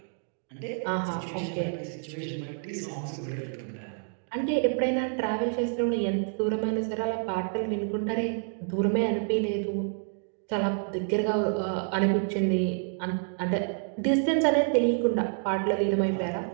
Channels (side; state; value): left; silent; 59 dB below the other